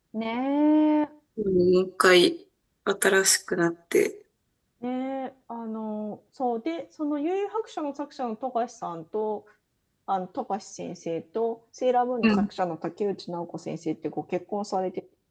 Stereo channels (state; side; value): identical; both; correlation 1.00